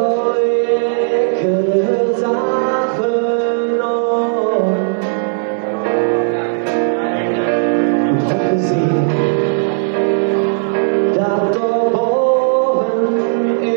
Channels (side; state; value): left; silent; digital silence